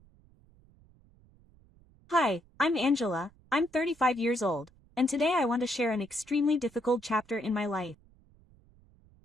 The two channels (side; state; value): right; noise; rumble, 29 dB below the sound